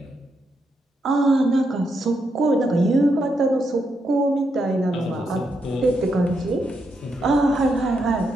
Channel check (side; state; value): both; normal; correlation 0.81